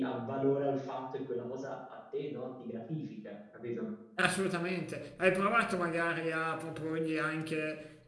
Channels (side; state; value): both; identical; correlation 1.00